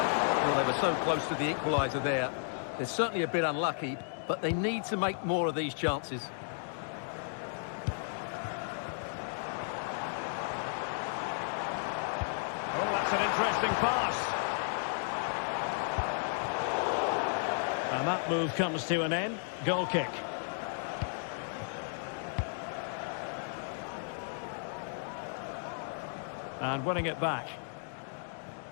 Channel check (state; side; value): silent; right; digital silence